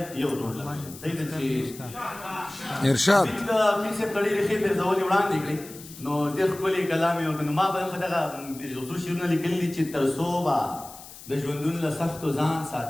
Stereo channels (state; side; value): noise; left; hiss, 17 dB below the sound